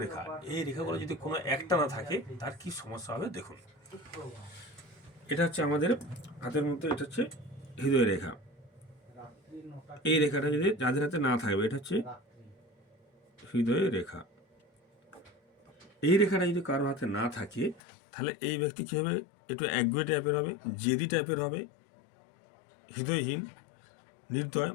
এই রেখাগুলো যদি কোনো একটা না থাকে তার কী সমস্যা হবে দেখুন। এটা হচ্ছে আমাদের হাতের মধ্যে, এটা হচ্ছে হৃদয় রেখা। এই রেখাটা যদি যাদের হাতে না থাকবে, এটা হচ্ছে হৃদয় রেখা। এই রেখাটা যদি কারোর হাতে না থাকে তাহলে এই ব্যক্তি কী হবে, একটু একগুয়ে টাইপের হবে, জেদি টাইপের হবে, হৃদয়হীন, নির্দয়,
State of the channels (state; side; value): drops out; right; at 17.8 s